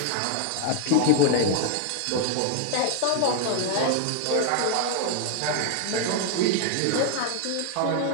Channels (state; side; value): different; both; correlation 0.01